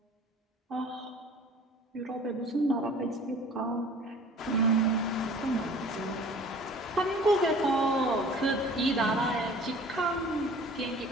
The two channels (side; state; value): both; normal; correlation 0.47